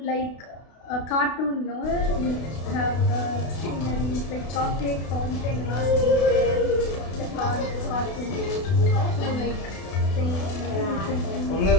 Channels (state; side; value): late; right; 32 ms